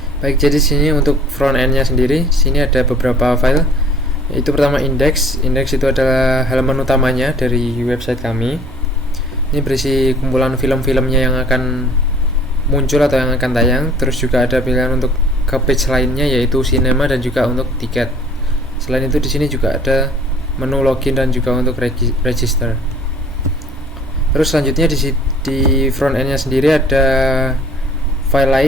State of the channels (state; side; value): normal; both; correlation 0.52